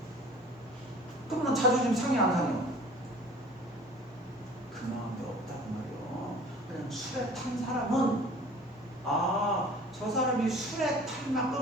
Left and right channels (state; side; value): normal; both; correlation 0.46